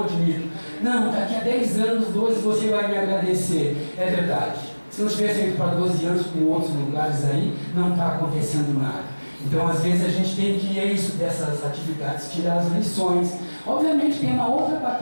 admito. Não, daqui a 10 anos, 12, você vai me agradecer. É verdade. Se não tivesse ido para 12 anos com outros lugares aí, não está acontecendo nada. Então, às vezes, a gente tem que, dessas atividades, tirar as lições. Obviamente, tem uma outra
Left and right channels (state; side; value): inverted; both; correlation -1.00